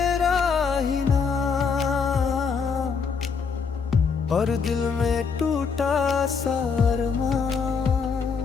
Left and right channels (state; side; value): quieter; right; 5.6 dB